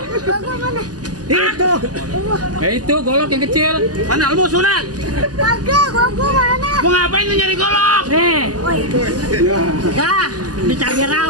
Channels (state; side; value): late; left; 0.68 ms